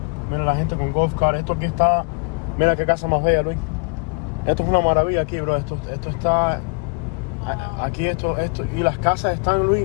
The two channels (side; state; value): right; quieter; 32.7 dB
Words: Mira la gente con golf car. Esto aquí está. Mira qué casa más bella, Luis. Esto es una maravilla aquí, bro. Esto está. Aquí esto. Y las casas están,